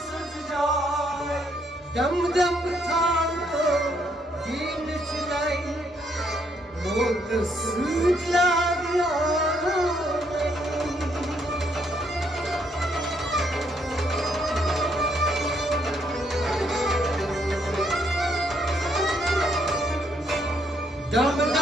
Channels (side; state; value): both; normal; correlation 0.72